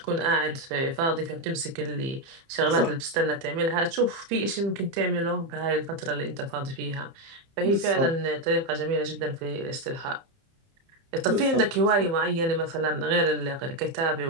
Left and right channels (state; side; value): late; left; 30 ms